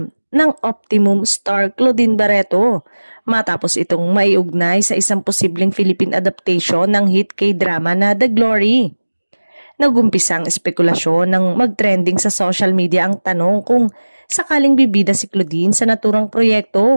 ng Optimum star Claudine Barreto matapos itong maiugnay sa isang posibleng Philippine adaptation ng hit K-drama na The Glory. Nagumpisang espekulasyon ng mag-trending sa social media ang tanong kung sakaling bibida si Claudine sa naturang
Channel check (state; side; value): inverted; both; correlation -1.00